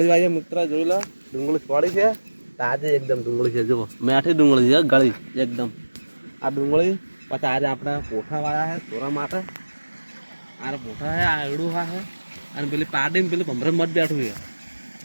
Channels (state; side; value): inverted; both; correlation -1.00